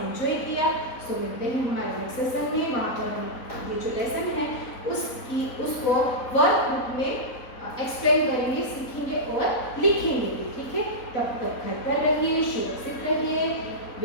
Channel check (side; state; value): right; late; 4.0 ms